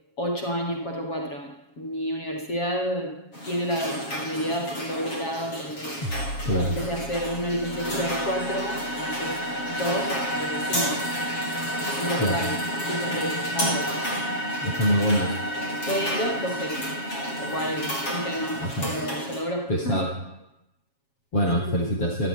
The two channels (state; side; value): late; right; 7.3 ms